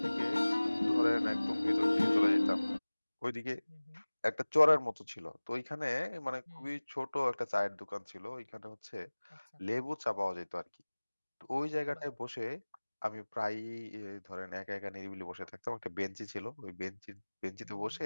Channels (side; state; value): both; inverted; correlation -1.00